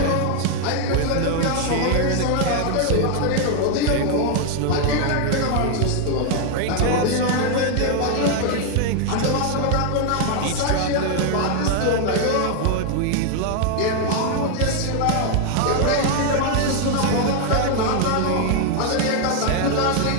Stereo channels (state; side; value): different; both; correlation 0.00